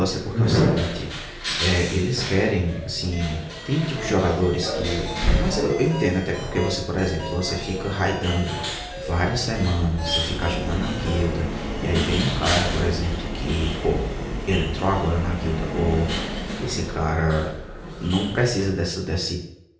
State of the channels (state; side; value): identical; both; correlation 1.00